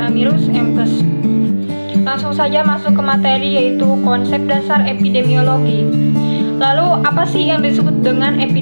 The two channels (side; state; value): both; inverted; correlation -1.00